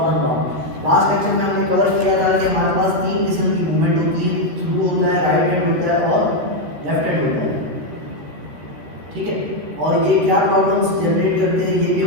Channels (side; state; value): left; late; 13 ms